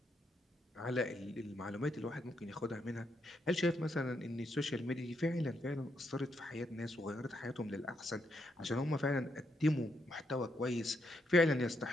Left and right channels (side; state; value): both; normal; correlation 0.78